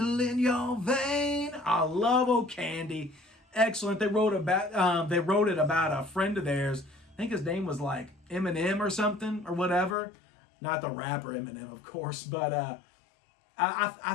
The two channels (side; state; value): right; drops out; at 10.0 s